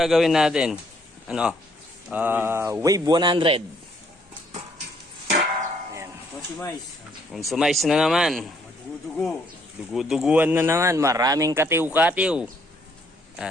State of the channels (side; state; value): both; normal; correlation 0.67